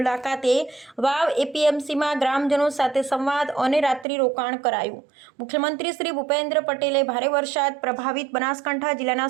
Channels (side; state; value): left; drops out; at 4.0 s